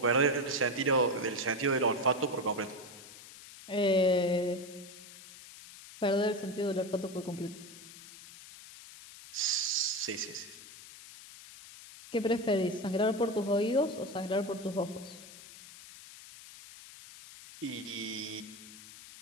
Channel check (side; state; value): left; noise; hiss, 17 dB below the sound